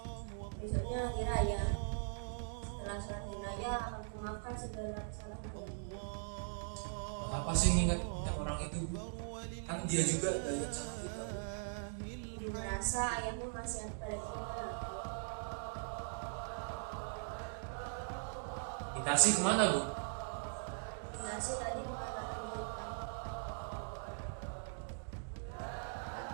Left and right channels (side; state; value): left; silent; digital silence